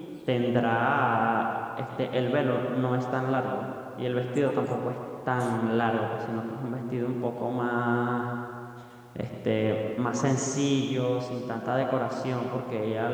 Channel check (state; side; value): identical; both; correlation 1.00